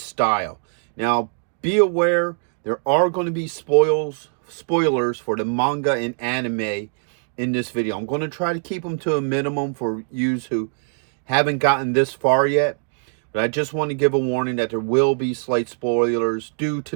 style. Now, be aware, there are going to be spoilers for the manga and anime in this video. I'm going to try to keep them to a minimum for you who haven't gotten this far yet. But I just want to give a warning that there will be slight spoilers due to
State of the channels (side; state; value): left; silent; 64 dB below the other